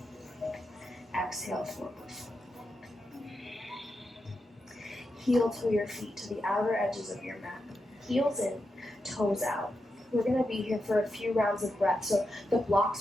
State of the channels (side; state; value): both; normal; correlation 0.87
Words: Exhale, forward. Heel toe your feet to the outer edges of your mat. Heels in, toes out. We're going to be here for a few rounds of breath. So the